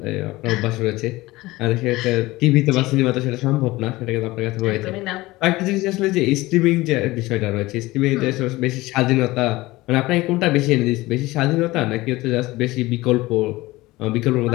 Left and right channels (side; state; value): right; quieter; 19.5 dB